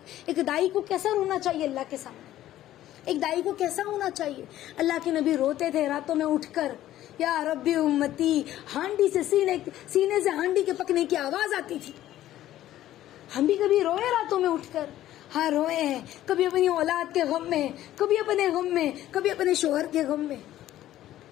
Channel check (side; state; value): right; quieter; 13.5 dB